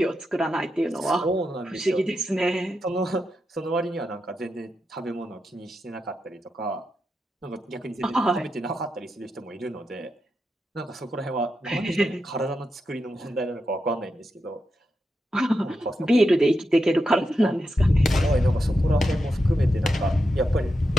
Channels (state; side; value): normal; both; correlation 0.87